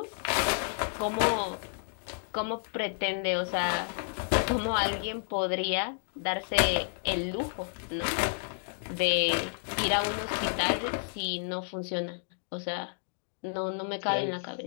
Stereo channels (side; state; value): right; silent; digital silence